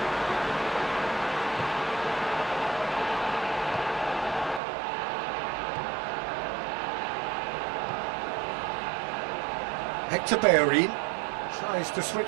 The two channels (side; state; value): left; drops out; at 4.6 s